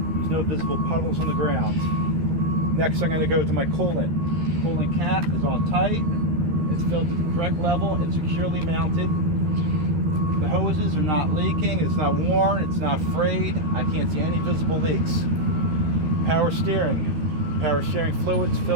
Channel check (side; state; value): left; late; 13 ms